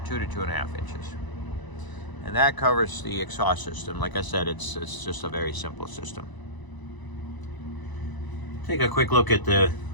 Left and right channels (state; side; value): late; right; 1.0 ms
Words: to 2.5 inches. And that covers the exhaust system. Like I said, it's just a very simple system. Take a quick look at